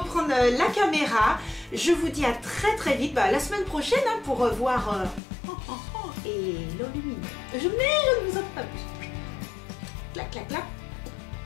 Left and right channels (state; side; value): drops out; right; at 5.2 s